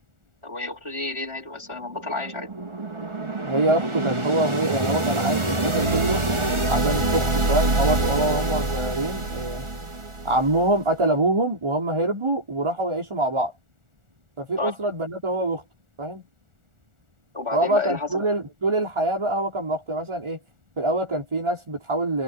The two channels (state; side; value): late; left; 1.4 ms